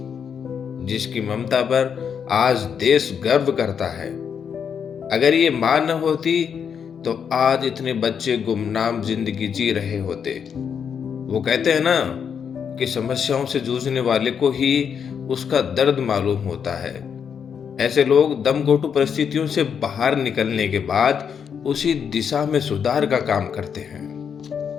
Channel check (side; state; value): right; quieter; 7.3 dB